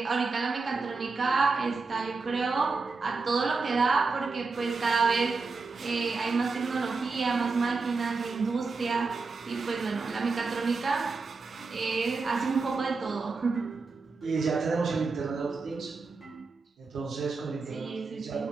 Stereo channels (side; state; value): left; quieter; 4.2 dB